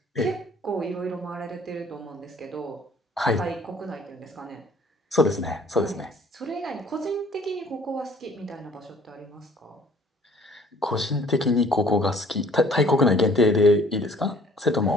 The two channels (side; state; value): both; normal; correlation 0.56